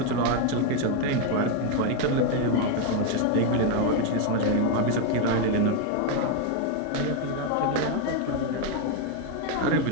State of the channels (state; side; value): different; both; correlation 0.01